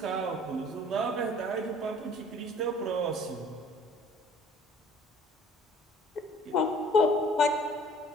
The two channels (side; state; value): both; normal; correlation 0.51